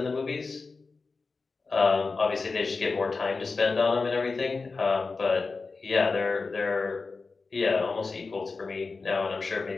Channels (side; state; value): right; quieter; 4.2 dB